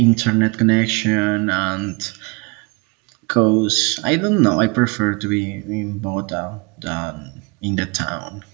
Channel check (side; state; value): left; quieter; 29.6 dB